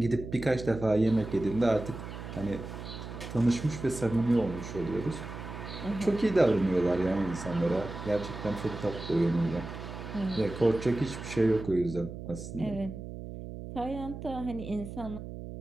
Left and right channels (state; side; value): noise; right; hum, 10 dB below the sound